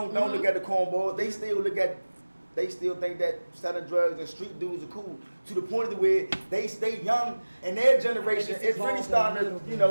look at the cornballs. They still think that selling drugs and street dudes are cool. To the point of where they stay young, and their generation is really starting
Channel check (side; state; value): both; inverted; correlation -1.00